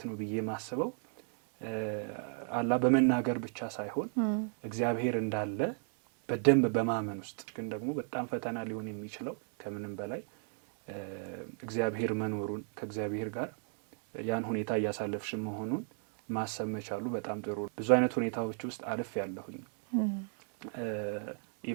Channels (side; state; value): left; silent; 54 dB below the other